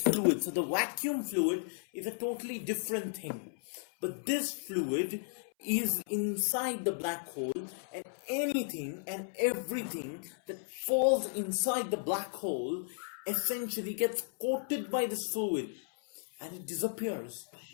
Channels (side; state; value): right; silent; 55 dB below the other